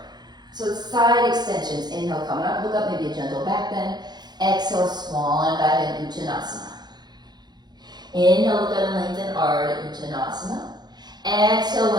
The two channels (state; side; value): late; left; 0.20 ms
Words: So side extensions. Inhale, coming up, look up, maybe a gentle back bend. Exhale, swan dive in Uttanasana. Inhale, look up and lengthen, Ardha Uttanasana. Exhale,